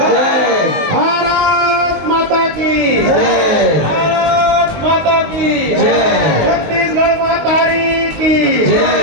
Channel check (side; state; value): left; late; 19 ms